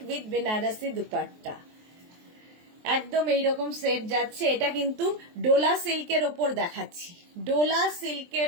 with Banarasi dupatta. একদম এইরকম সেট যাচ্ছে। এটা কিন্তু ডোলা সিল্কের ওপর দেখাচ্ছি, ডোলা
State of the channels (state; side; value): late; left; 23 ms